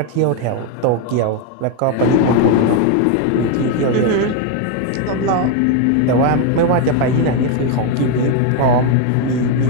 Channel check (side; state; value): both; different; correlation 0.01